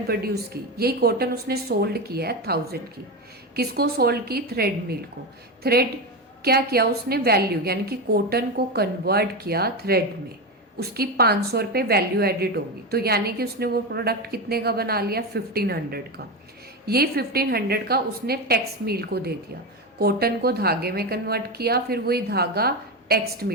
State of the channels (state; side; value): normal; both; correlation 0.16